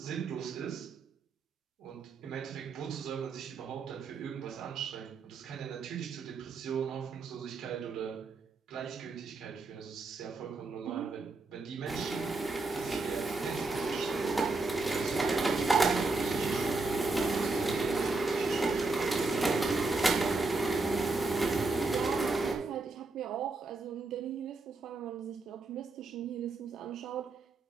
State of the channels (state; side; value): quieter; left; 3.5 dB